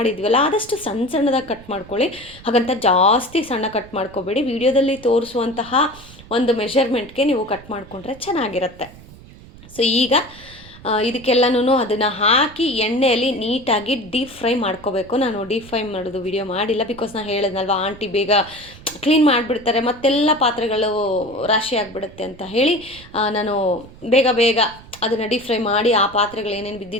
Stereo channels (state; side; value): noise; right; rumble, 20 dB below the sound